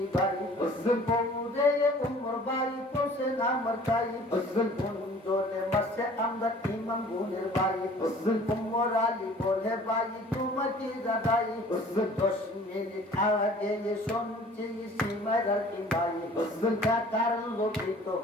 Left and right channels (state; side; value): normal; both; correlation 0.50